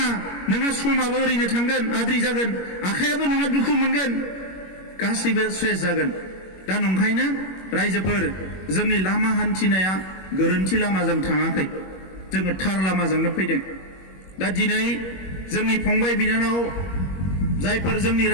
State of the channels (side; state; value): right; late; 21 ms